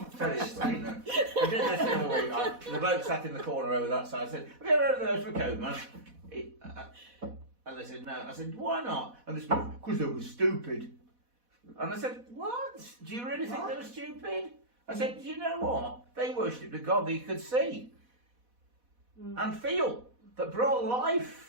Tell you this, I did this the other week. The bloke sat in the corner over that side. I said, "Have you ever heard of the ghost of a caveman?" And they said, "No." I said, "Why not?" And they said, "Because they were stupid." And I said, "What? Do you really think they were stupid?" I said, "Do you know what? They worshipped a god that you could see and feel, that brought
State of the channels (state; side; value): late; left; 4.1 ms